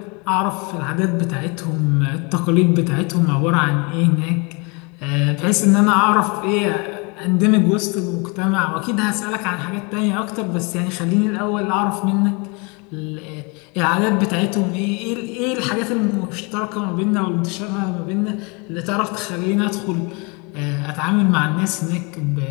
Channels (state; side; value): quieter; right; 30.8 dB